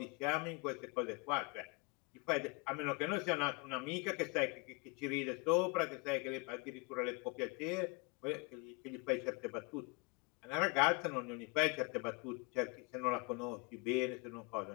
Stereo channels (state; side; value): quieter; right; 29.6 dB